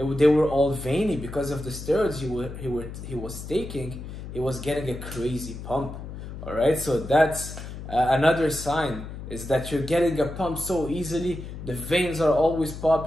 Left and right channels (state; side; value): noise; left; hum, 10 dB below the sound